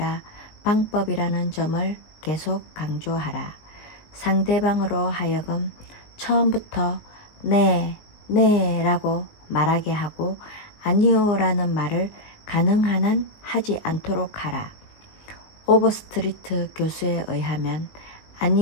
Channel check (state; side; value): late; right; 19 ms